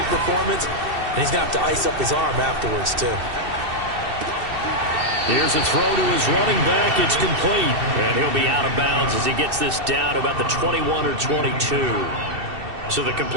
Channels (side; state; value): left; late; 2.7 ms